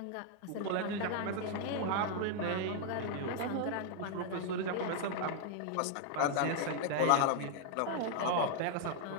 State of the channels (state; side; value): different; both; correlation 0.00